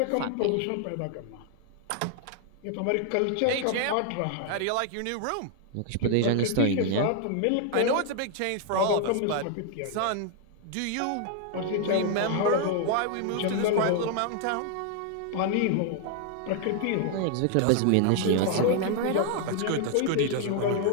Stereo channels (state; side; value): different; both; correlation 0.00